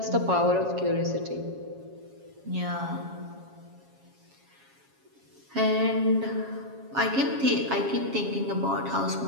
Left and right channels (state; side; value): late; left; 7.3 ms